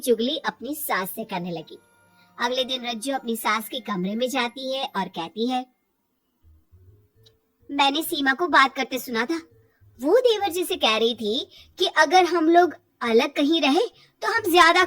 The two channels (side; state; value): both; identical; correlation 1.00